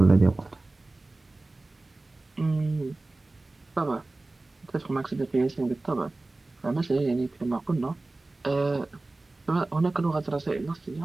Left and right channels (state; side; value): quieter; left; 3.0 dB